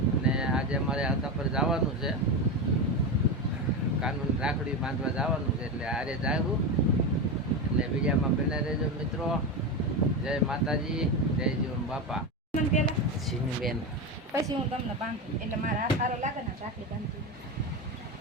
અને આજે અમારે હતા પર જવાનું છે, કાનૂન રાખડી બાંધવા જવાનું છે, એટલે આરે જાવું. એટલે બીજામાં બને રહેજો મિત્રો. જય માતાજી, જય જીવન બાપા. બેન પછી હું તમને બાંધું એટલે મારા હાથ સારો લાગે ને રાખડી બાંધું.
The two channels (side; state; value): both; normal; correlation 0.17